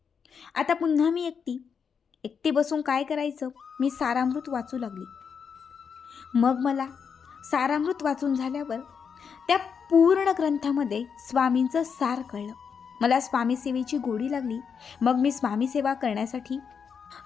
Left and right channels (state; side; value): quieter; right; 6.5 dB